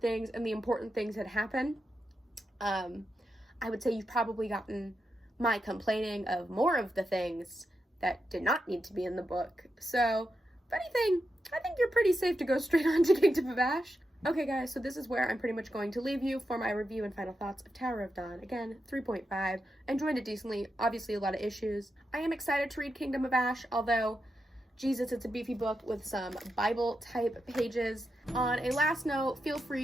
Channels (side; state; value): both; normal; correlation 0.87